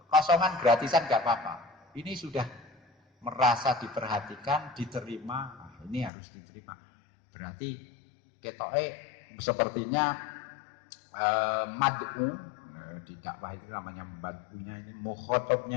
kosongan gratisan gak apa-apa. Ini sudah merasa diperhatikan, diterima. Nah, ini harus diterima. Berarti ketoke sepertinya mad'u di dakwah itu namanya mad'unya ini,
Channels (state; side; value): drops out; right; at 6.1 s